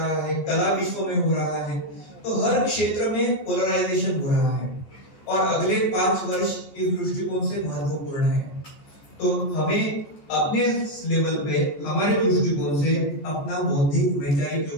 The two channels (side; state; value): right; late; 14 ms